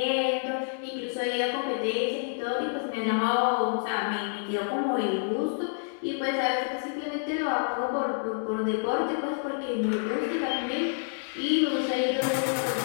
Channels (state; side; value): silent; right; 59 dB below the other